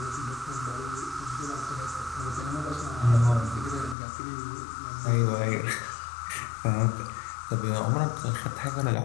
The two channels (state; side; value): drops out; right; at 4.0 s